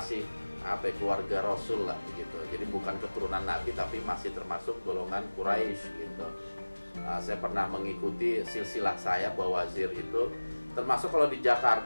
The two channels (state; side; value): inverted; both; correlation -1.00